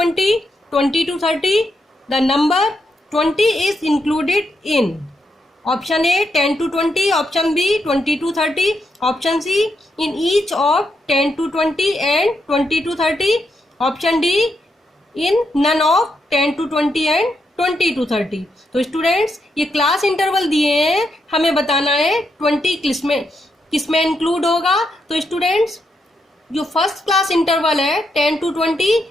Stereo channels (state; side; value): normal; both; correlation 0.81